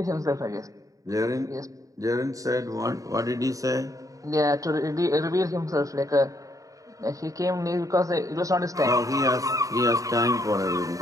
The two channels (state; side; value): late; left; 0.16 ms